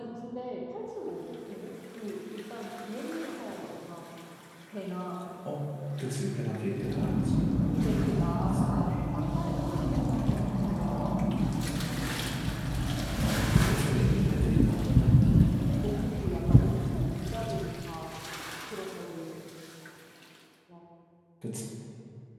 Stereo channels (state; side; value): identical; both; correlation 1.00